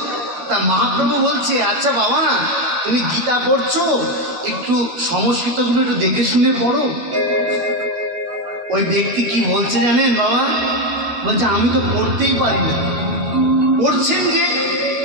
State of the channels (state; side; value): late; left; 13 ms